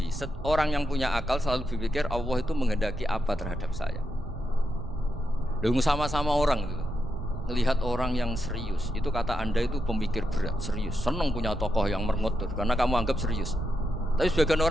Orang yang punya akal selalu berpikir Allah itu menghendaki apa terhadap saya. Lalu sama-sama orang itu melihat orang yang serius, itu kata Anda itu pemikir berat, serius, senang punya tokoh yang merengut karena kamu anggap serius. Tapi sebagian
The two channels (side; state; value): both; normal; correlation 0.85